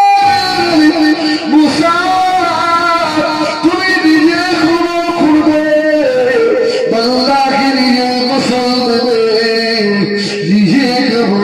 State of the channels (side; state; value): both; identical; correlation 1.00